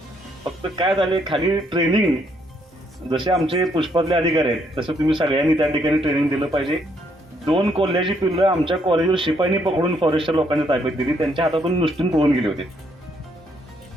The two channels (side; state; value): both; normal; correlation 0.71